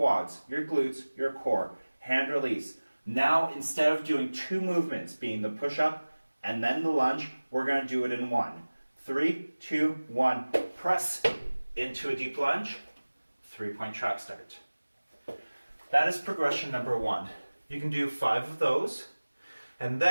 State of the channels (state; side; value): inverted; both; correlation -1.00